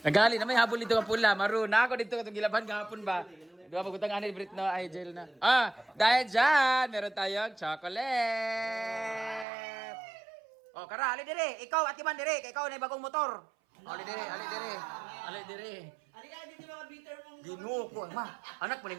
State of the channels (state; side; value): drops out; left; at 9.5 s